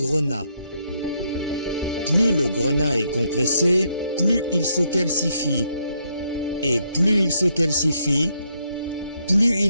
Plus le grenat est compressé, plus il se calcifie. Et plus il se calcifie, plus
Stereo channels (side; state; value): both; inverted; correlation -0.75